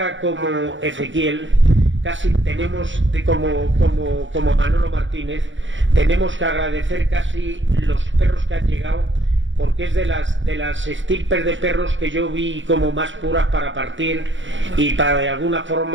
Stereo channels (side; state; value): left; late; 0.55 ms